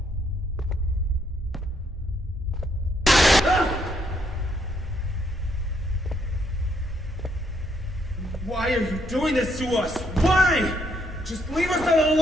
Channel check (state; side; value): normal; both; correlation 0.73